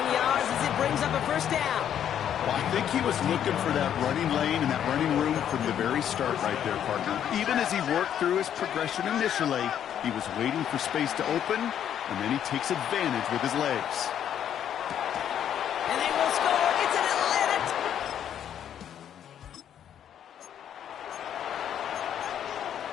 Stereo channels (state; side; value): quieter; right; 9.7 dB